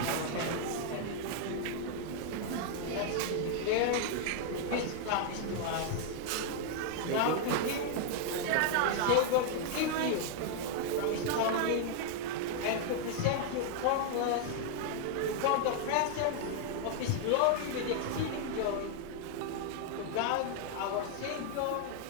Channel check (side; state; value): both; different; correlation 0.00